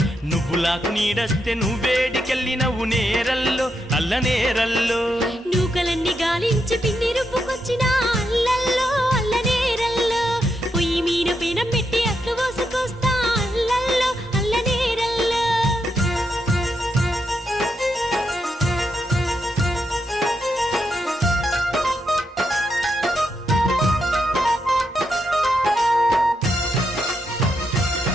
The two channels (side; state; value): both; normal; correlation 0.83